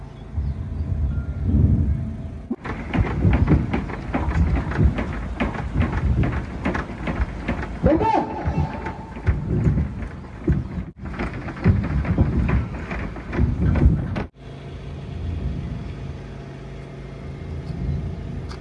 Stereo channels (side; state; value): both; identical; correlation 1.00